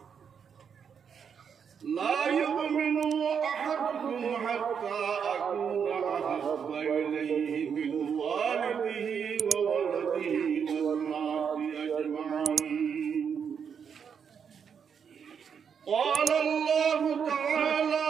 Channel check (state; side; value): quieter; left; 7.1 dB